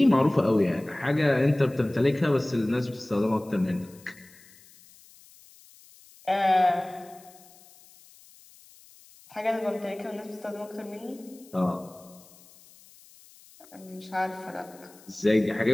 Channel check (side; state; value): left; noise; hiss, 25 dB below the sound